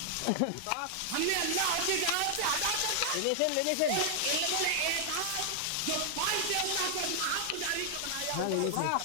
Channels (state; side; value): different; both; correlation 0.00